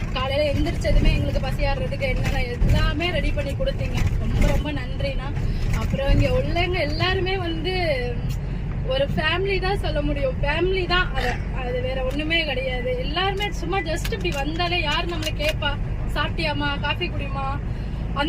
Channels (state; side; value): identical; both; correlation 1.00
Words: காலையில எந்திரிச்சதுமே எங்களுக்கு பசியாடுறதுக்கு என்னென்ன எல்லாமே ரெடி பண்ணி கொடுத்தீங்க. ரொம்ப ரொம்ப நன்றிண்ணா. அப்புறம் இங்க உள்ளவங்க எல்லாருமே வந்து ஒரு ஃபேமிலி தான் சொல்ல முடியும். ஃபேமிலி தான், அது வேற ஒண்ணுமே கிடையாது. எல்லாருமே சும்மா ஜஸ்ட் இப்படி வந்தாலே யார் நம்மளை கேட்பா சாப்பிட்டியாமா காஃபி குடிமா